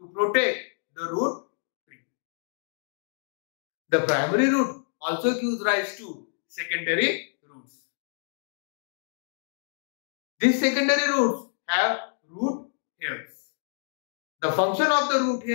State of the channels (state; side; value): silent; right; digital silence